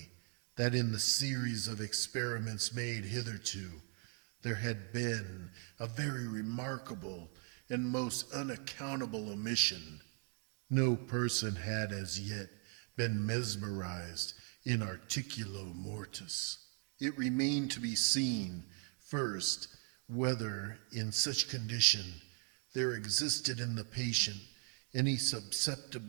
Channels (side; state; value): left; quieter; 36.1 dB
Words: that in the series of experiments made hitherto, there had been a very remarkable and most unaccountable omission. No person had as yet been mesmerized in articulo mortis. It remained to be seen, first, whether in such condition there existed in the patient any